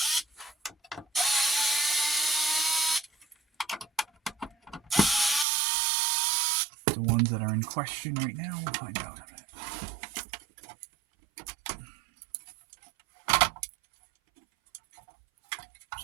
The one ones that are in question right now. We'll find out in a minute.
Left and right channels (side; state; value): left; drops out; at 5.5 s